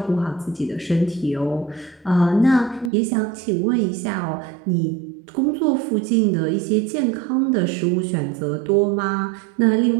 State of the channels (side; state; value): left; drops out; at 2.9 s